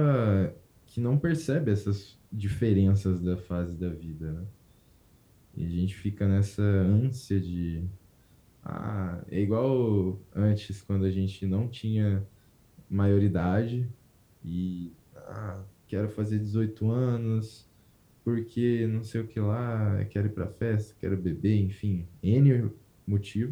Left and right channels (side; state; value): both; identical; correlation 1.00